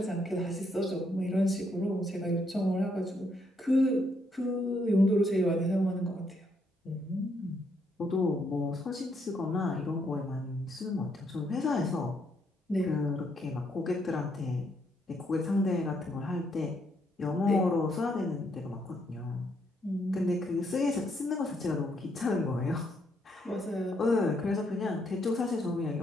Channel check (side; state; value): both; normal; correlation 0.74